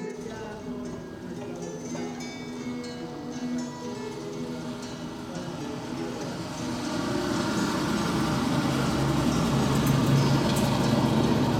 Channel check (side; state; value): both; identical; correlation 1.00